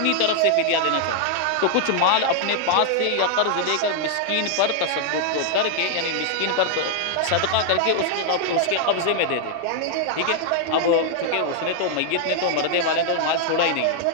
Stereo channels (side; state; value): both; different; correlation 0.00